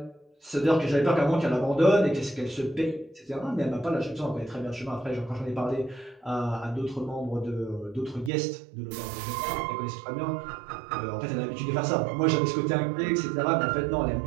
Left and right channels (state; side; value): drops out; left; at 8.3 s